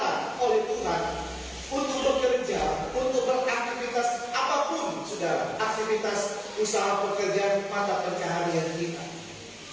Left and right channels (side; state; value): both; identical; correlation 1.00